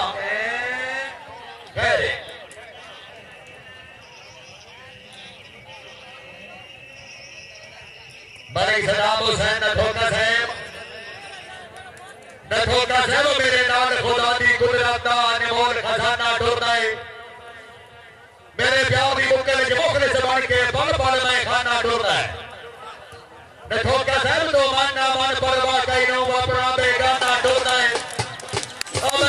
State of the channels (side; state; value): both; identical; correlation 1.00